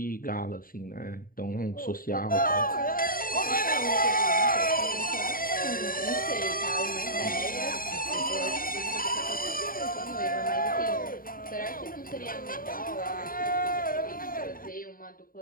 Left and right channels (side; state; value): right; late; 0.41 ms